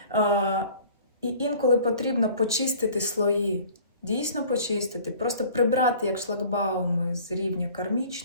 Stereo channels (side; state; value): both; inverted; correlation -0.49